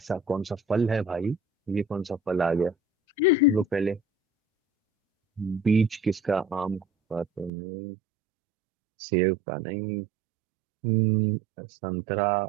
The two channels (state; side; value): drops out; left; at 7.5 s